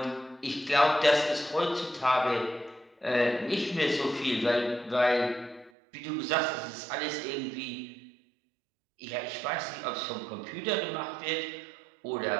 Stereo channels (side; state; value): left; drops out; at 5.7 s